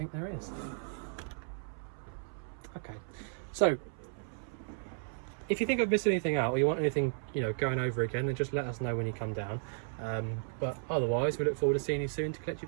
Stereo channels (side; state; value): left; silent; 55 dB below the other